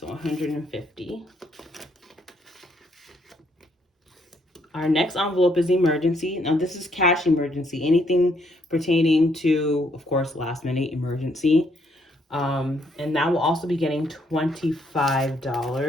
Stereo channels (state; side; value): normal; both; correlation 0.71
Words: 150. Our next envelope is emergency. Now this is cash emergency. Anything pertaining to, of course, last minute emergency. And that will also be getting